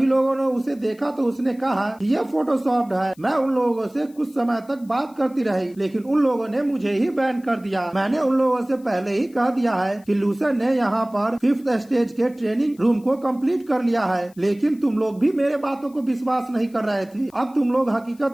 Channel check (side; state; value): left; noise; hiss, 29 dB below the sound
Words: लोगों ने उसे देखा तो उसने कहा ये फोटोशॉप्ड है। मैं उन लोगों से कुछ समय तक बात करती रही लेकिन उन लोगों ने मुझे ही बैन कर दिया। मैंने उन लोगों से पहले ही कह दिया है कि लूसन ने यहाँ पर 5th स्टेज के ट्रेनिंग रूम को कंप्लीट कर लिया है, लेकिन तुम लोग भी मेरे बातों को विश्वास नहीं कर रहे थे। अब तुम लोग